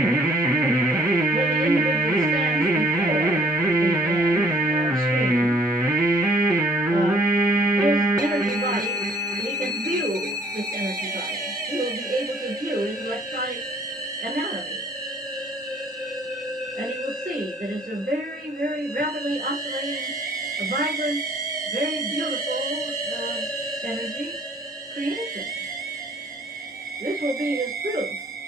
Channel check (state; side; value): normal; both; correlation 0.58